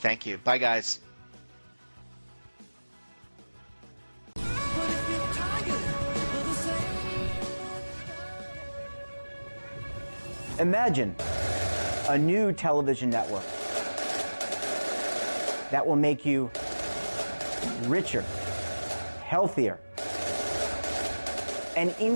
you. Bye, guys. Imagine a new television network that will make you richer, healthier, and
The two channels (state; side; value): inverted; both; correlation -1.00